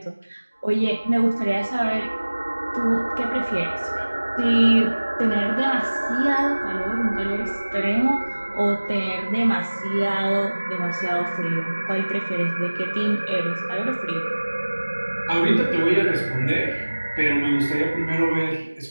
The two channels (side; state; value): both; inverted; correlation -1.00